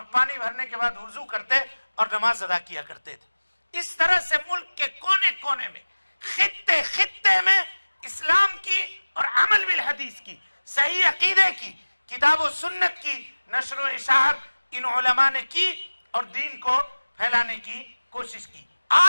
پانی بھرنے کے بعد وضو کرتے اور نماز ادا کیا کرتے تھے۔ اس طرح سے ملک کے کونے کونے میں، خطے خطے میں اسلام کی اور عمل بالحدیث کی، صحیح عقیدے کی، کتاب و سنت کی نشر و اشاعت ان علماء نے کی اور دین کو پھیلانے کی کوشش کی۔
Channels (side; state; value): both; inverted; correlation -1.00